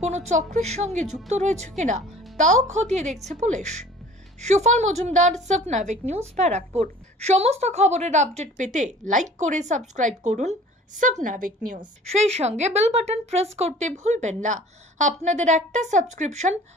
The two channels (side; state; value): both; normal; correlation 0.48